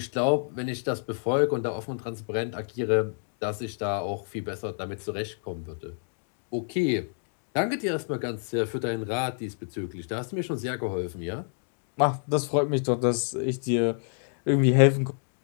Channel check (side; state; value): right; silent; digital silence